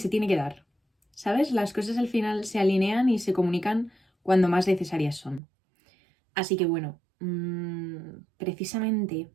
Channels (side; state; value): left; drops out; at 5.4 s